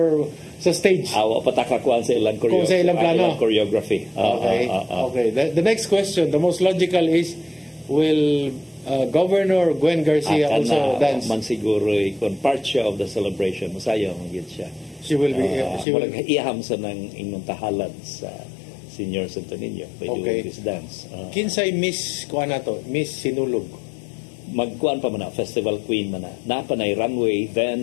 sa stage? Wa pa ta kuan sa ilang choreography. Okay. The next question, the most logical is, will Governor Gwen Garcia also dance? Man siguro kon part siya of the celebration. Musayo man gid siya. She will be. She will iham sa ng inyong tahalad sa Senior Santo Niño by doing this dance. Kinsay Miss kuan nato, Miss Sinulog. Magkuan pa man na, festival queen man na. Napanay runway,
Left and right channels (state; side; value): drops out; right; at 15.9 s